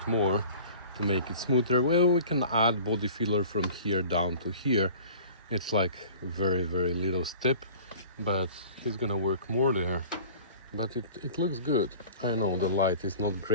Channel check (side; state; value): both; inverted; correlation -0.44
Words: more to make it smoother. Well, we can add body filler from here down to here. It's like very little step, but he's gonna work more there. But it looks good. I know the light is not